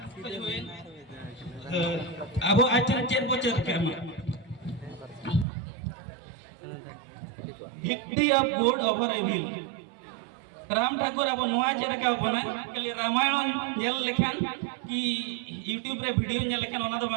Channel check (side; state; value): left; drops out; at 5.5 s